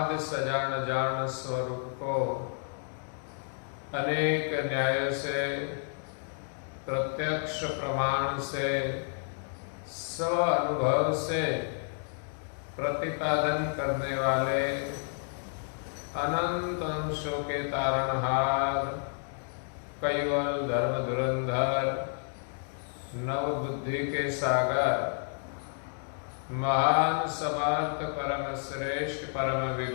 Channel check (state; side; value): silent; right; 57 dB below the other